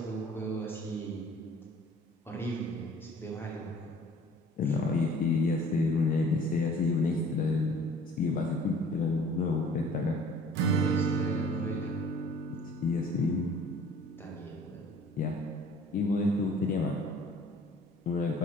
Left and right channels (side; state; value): both; normal; correlation 0.51